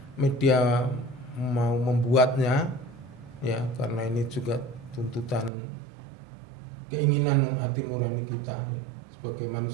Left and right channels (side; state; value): left; drops out; at 5.5 s